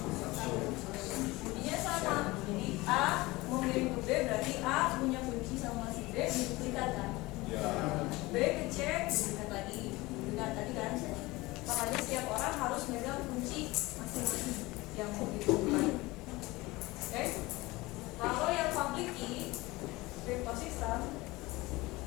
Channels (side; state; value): right; quieter; 21.1 dB